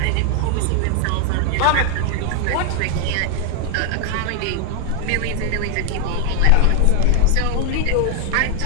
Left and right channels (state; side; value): different; both; correlation 0.00